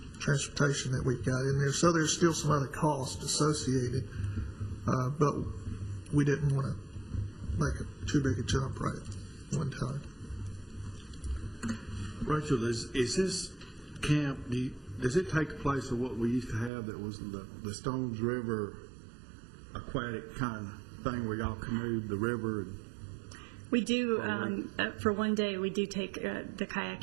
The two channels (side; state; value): left; drops out; at 16.7 s